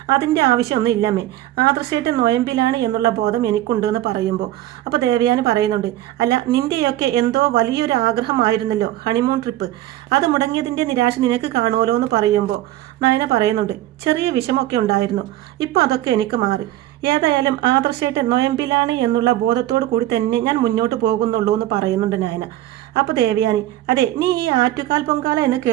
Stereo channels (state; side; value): quieter; left; 14.5 dB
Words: അതിൻ്റെ ആവശ്യമൊന്നും ഇല്ലമ്മേ, ആദർശേട്ടൻ നോയമ്പിലാണ് എന്നുള്ള ബോധം എനിക്കുണ്ട് എന്ന് പറയുമ്പോൾ അപ്പോൾ ദേവയാനി പറയുന്നുണ്ട്, അല്ല നിന്റെയൊക്കെ എന്തോ വലിയൊരു ആഗ്രഹമായിരുന്നല്ലോ ഹണിമൂൺ ട്രിപ്പ്, അത് മുടങ്ങിയതിൻ്റെ നിരാശ നിനക്ക് കാണുമല്ലോ എന്ന് പറയുമ്പോൾ നയന പറയുന്നുണ്ട്, ചെറിയ വിഷമമൊക്കെ ഉണ്ടായിരുന്നു, ഇപ്പോൾ അതൊക്കെ എനിക്ക് മാറി. ഏതായാലും ആദർശേട്ടൻ നോയമ്പിലാണ് എന്നുള്ള ബോധത്തോടു കൂടി തന്നെ ഞാൻ മുന്നോട്ട് പോകുന്നുള്ളൂ എന്ന് പറയുന്നുണ്ട് നയന. അപ്പോൾ ദേവയാനി, അതെ, നീ ഈ ആറ്റുകാൽ പൊങ്കാല എന്ന്